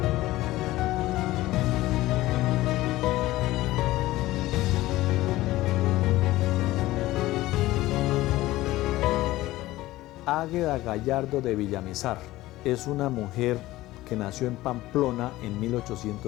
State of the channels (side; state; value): right; quieter; 17.1 dB